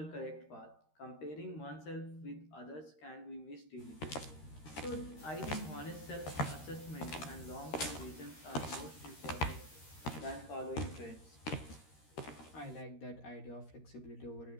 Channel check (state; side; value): late; right; 13 ms